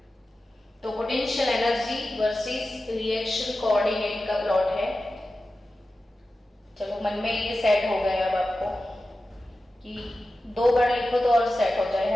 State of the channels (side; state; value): both; normal; correlation 0.93